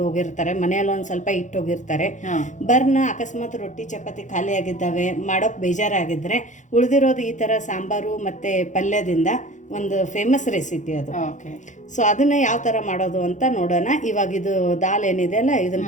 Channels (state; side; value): late; right; 0.36 ms